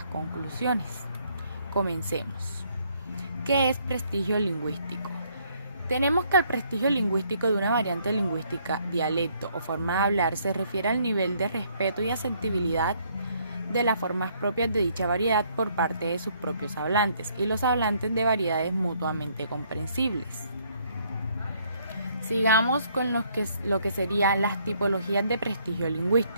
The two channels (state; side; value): inverted; both; correlation -0.67